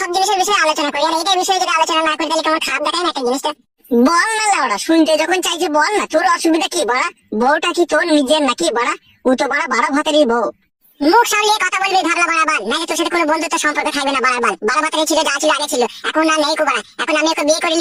জিনিসের বিষয়ে আলোচনা করি, আর এইটার বিষয়ে যদি আলোচনা না করি তাহলে তোমার খারাপ দেখায় না একটা জিনিসটা। বল না লাউড়া, শুনতে যখন চাইছি বল না, তোর অসুবিধা কি বড়া? বউটা কি তোর নিজের নাকি বড়া? ও তো বড়া 12 ভাতেরই বউ। মুখ সামলিয়ে কথা বলবি ভাবলা বাড়াবার, নাকি তোর সাথে কোনো বন্ধুত্ব সম্পর্ক থাকবে না বাড়াবার। 12 ভাতেরই ছিল, যা ছিল আগে ছিল, এখন না নেই কোবা। এখন আমি ওকে বিয়ে করে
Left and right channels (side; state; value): both; identical; correlation 1.00